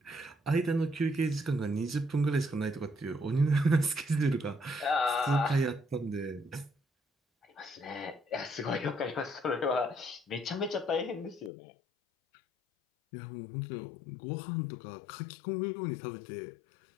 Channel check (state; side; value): drops out; right; at 11.5 s